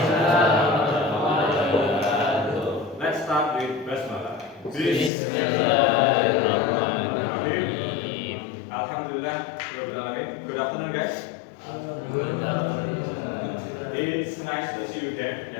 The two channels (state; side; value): drops out; right; at 5.1 s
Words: warahmatullahi wabarakatuh. Let's start with basmalah. Bismillahirrahmanirrahim. Alhamdulillah, rabbil alamin. Good afternoon, guys. Good afternoon. It's nice to see you again,